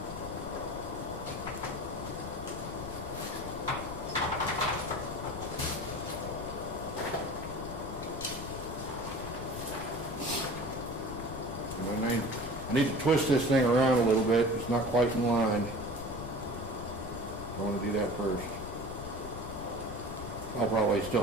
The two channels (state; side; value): noise; left; rumble, 10 dB below the sound